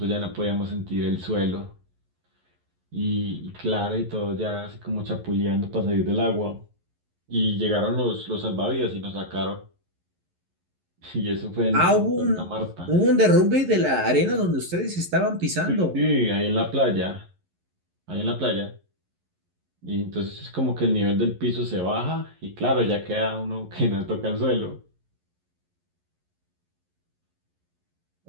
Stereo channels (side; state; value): left; late; 11 ms